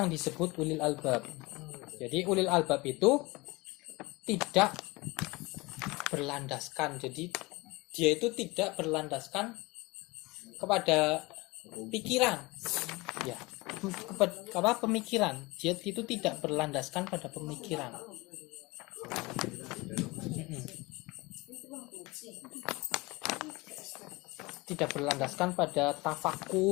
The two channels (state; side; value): quieter; right; 23.5 dB